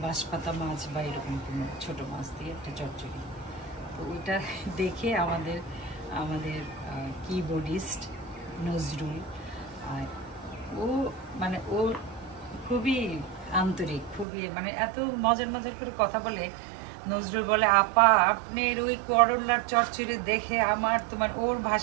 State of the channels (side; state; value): left; drops out; at 14.2 s